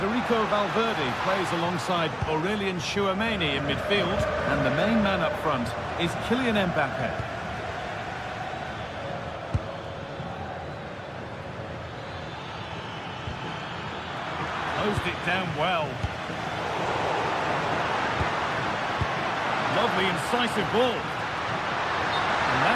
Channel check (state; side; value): identical; both; correlation 1.00